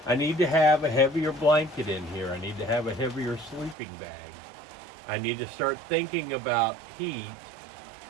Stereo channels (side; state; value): left; drops out; at 3.8 s